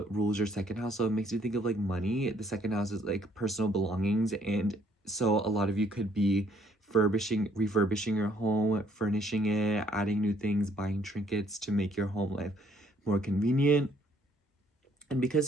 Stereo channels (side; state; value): both; normal; correlation 0.65